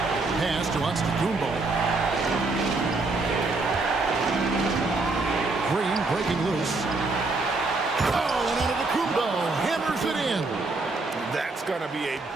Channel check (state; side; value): quieter; left; 3.4 dB